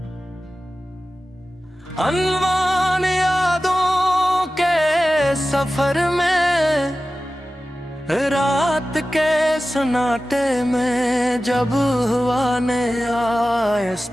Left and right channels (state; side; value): normal; both; correlation 0.95